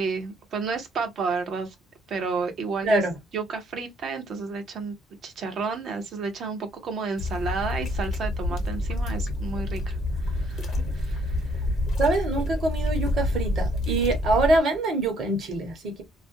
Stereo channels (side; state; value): both; normal; correlation 0.66